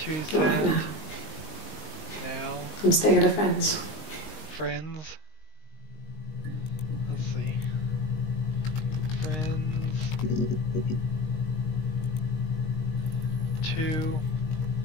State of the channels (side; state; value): right; late; 19 ms